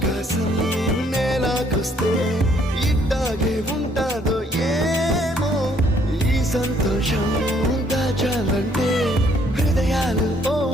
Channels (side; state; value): both; normal; correlation 0.65